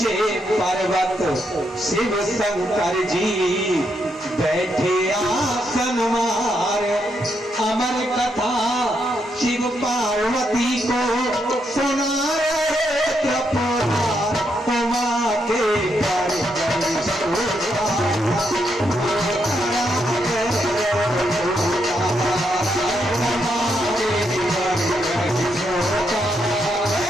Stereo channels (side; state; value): both; normal; correlation 0.79